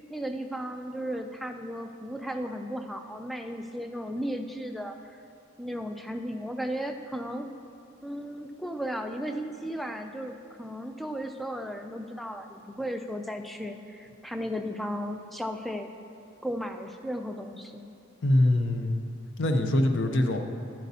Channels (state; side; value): normal; both; correlation 0.86